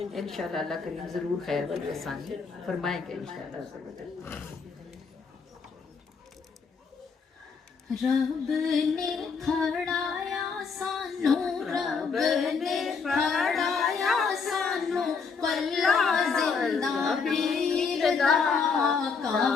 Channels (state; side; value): quieter; right; 5.3 dB